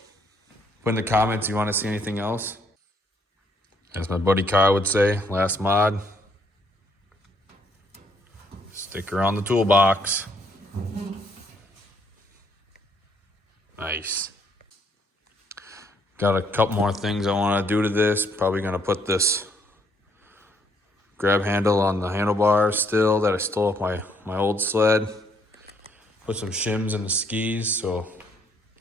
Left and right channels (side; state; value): both; normal; correlation 0.69